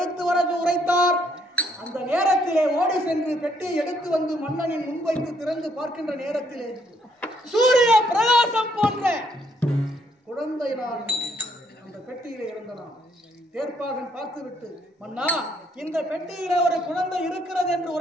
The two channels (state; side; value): normal; both; correlation 0.70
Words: வர உரைத்தார். அந்த நேரத்திலே ஓடி சென்று பெட்டியை எடுத்து வந்து மன்னனின் முன்வைத்து திறந்து பார்க்கின்ற நேரத்திலே சூரிய பிரகாசம் போன்ற குழந்தை நான் அந்த பெட்டியிலே இருந்தனான். தேர்ப்பாகன் பார்த்துவிட்டு, மன்னா, இந்த பெட்டியிலே ஒரு குழந்தை இருக்கிறது என்று